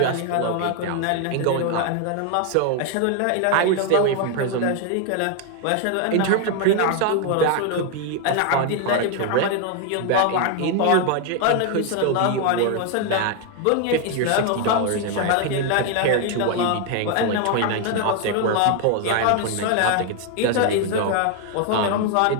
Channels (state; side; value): different; both; correlation 0.01